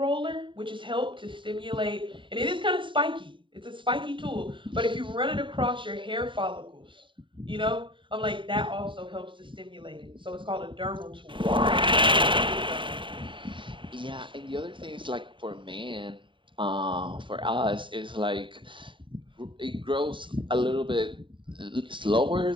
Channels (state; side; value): late; left; 0.24 ms